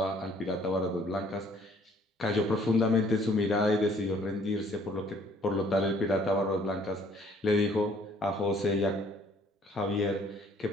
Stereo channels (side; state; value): both; normal; correlation 0.59